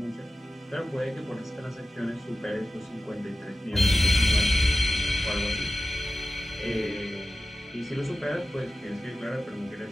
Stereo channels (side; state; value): both; normal; correlation 0.94